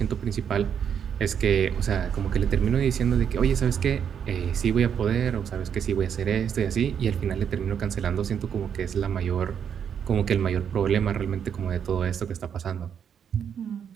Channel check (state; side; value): quieter; left; 8.0 dB